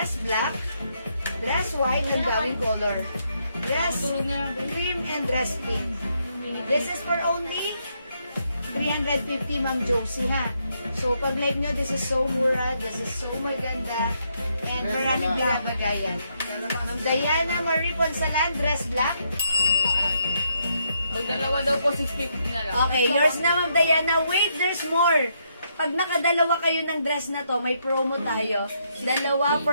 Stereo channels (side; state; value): both; inverted; correlation -0.76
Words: black, dress white and bowing color, dress cream and dress pink. This is for only 350, Ma'am Josie, ha? So, pag like nyo, this is so mura, this is so maganda, and maraming binabagayan. Ma'am Diana Marie Ponsalan, dress black. Pag dalawa daw po, 650 na lang. Okay, yours na, Ma'am Diana. Wait, there's more. Pag nakadalawa kayo ng dress na to, may promo tayo. Dalawa